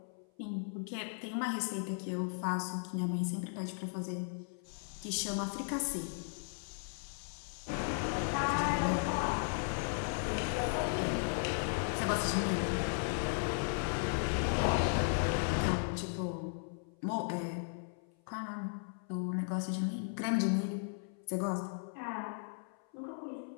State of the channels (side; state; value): right; silent; 53 dB below the other